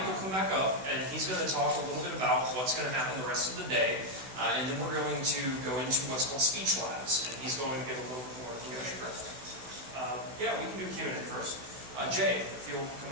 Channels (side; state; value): left; late; 16 ms